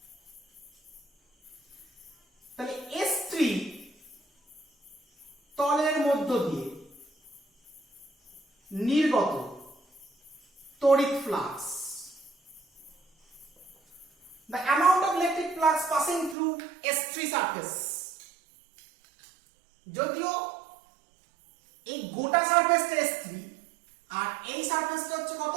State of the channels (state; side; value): drops out; left; at 16.4 s